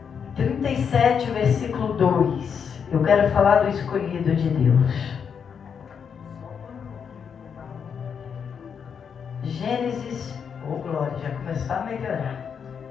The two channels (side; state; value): right; quieter; 7.0 dB